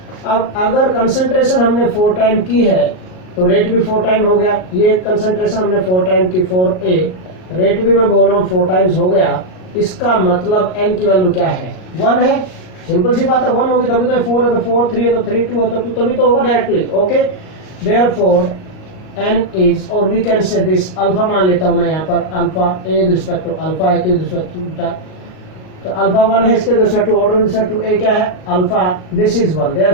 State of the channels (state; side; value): late; right; 38 ms